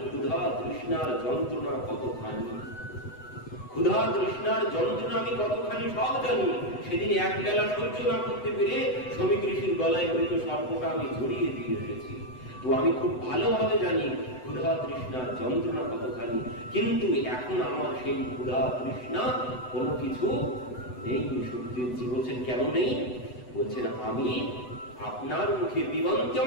ক্ষুধা তৃষ্ণার যন্ত্রণা কতখানি, ক্ষুধা তৃষ্ণার যন্ত্রণা আমি কতখানি সব জানি। সেদিন এক বেলা সহ্য না করতে পেরে শ্রমিক ঋষির গলায় মৃত সর্পটা আমি জড়িয়ে দিয়ে এসেছি। তো আমি খুব ভালোভাবে জানি ক্ষুধা তৃষ্ণার যন্ত্রণা কতখানি, কিন্তু এখন আমার সেই ক্ষুধা তৃষ্ণা কোনো কিছু নেই। সুখদেবজি বলছেন কেন নেই? বলছেন আমি আপনার মুখে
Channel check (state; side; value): late; right; 8.0 ms